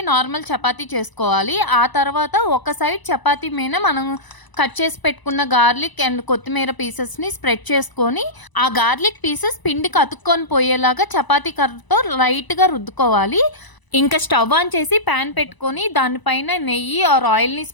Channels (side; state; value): right; late; 1.0 ms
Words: నార్మల్ చపాతీ చేసుకోవాలి. ఆ తర్వాత ఒక సైడ్ చపాతీ మీద మనం కట్ చేసి పెట్టుకున్న గార్లిక్ అండ్ కొత్తిమీర పీసెస్ని స్ప్రెడ్ చేసుకొని ఆ గార్లిక్ పీసెస్ పిండికి అతుక్కొని పోయేలాగా చపాతీ కర్రతో లైట్గా రుద్దుకోవాలి. ఇంకా స్టవ్ ఆన్ చేసి ప్యాన్ పెట్టుకొని దానిపైన నెయ్యి ఆర్ ఆయిల్ని